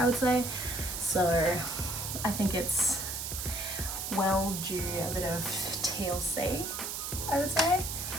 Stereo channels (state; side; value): noise; right; hiss, 4 dB below the sound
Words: would say, so I think it's well due a bit of TLC, I would say.